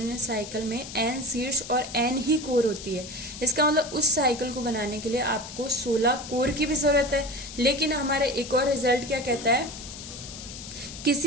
साइकिल में n शीर्ष और n ही कोर होती है। इसका मतलब उस साइकिल को बनाने के लिए आपको 16 कोर की भी जरूरत है। लेकिन हमारा एक और रिजल्ट क्या कहता है,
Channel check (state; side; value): noise; left; hiss, 12 dB below the sound